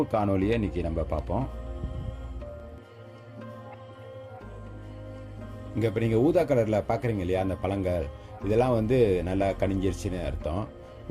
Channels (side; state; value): both; identical; correlation 1.00